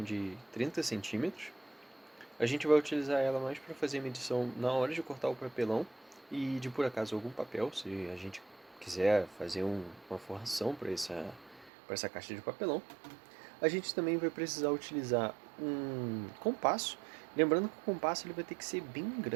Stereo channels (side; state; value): left; drops out; at 11.7 s